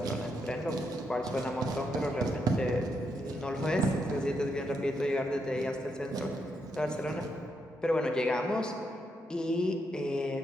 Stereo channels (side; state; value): both; normal; correlation 0.80